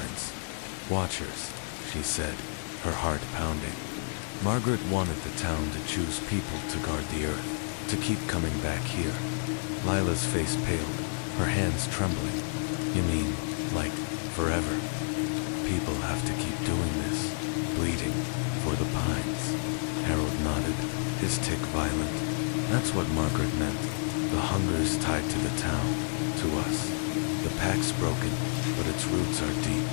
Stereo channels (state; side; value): silent; right; digital silence